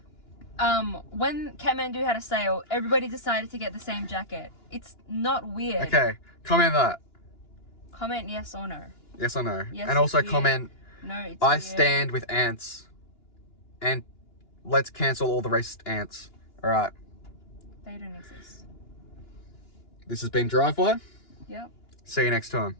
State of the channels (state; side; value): late; right; 2.9 ms